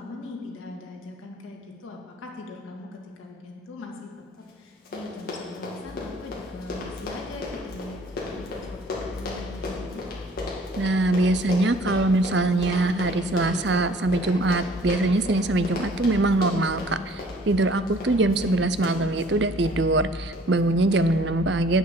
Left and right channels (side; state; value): both; normal; correlation 0.55